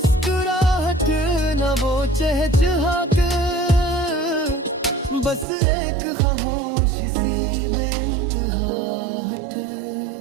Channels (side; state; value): left; drops out; at 5.5 s